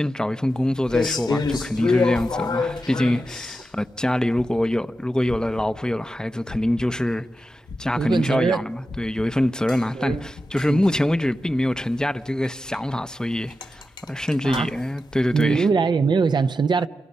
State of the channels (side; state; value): both; normal; correlation 0.90